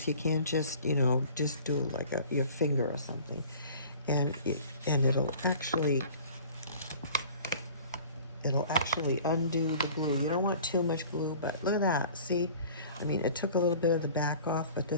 You can't just, just do like your finger or something. And it'll actually undo the glue. You don't want too much glue, but look at that. See, I mean, it took a little bit of the back off, but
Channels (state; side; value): inverted; both; correlation -0.46